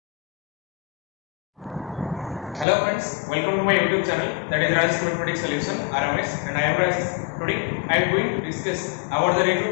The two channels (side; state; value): right; drops out; at 2.7 s